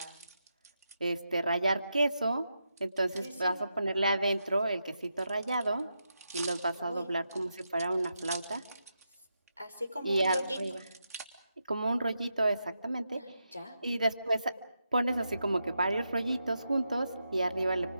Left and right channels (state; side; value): inverted; both; correlation -0.86